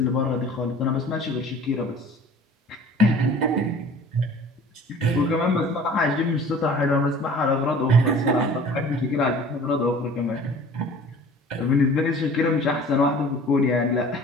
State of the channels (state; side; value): normal; both; correlation 0.46